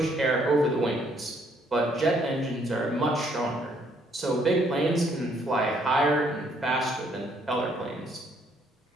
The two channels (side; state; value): both; normal; correlation 0.67